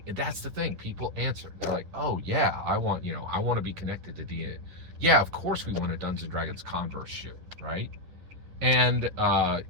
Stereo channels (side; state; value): left; late; 10 ms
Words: That's the thing. People answer. They're like, "Oh yeah, I want to be connected to D&D. Yeah, of course we want a Dungeons & Dragons Converse shoe, right?" And